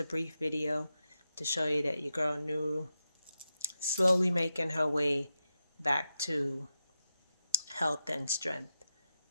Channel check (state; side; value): inverted; both; correlation -0.89